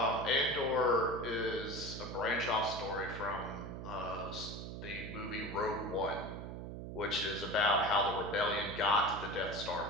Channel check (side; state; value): right; noise; hum, 8 dB below the sound